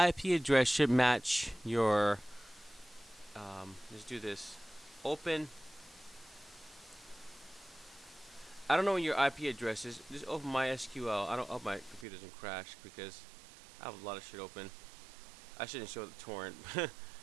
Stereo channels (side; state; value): left; drops out; at 12.1 s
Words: address should match your. Let's do this. Open. I don't know what your IP address is. Just open MySQL. I hope my computer doesn't crash, because I have a lot of shit open. I shouldn't show the torrent,